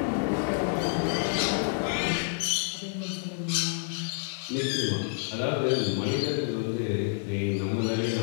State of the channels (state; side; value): silent; right; digital silence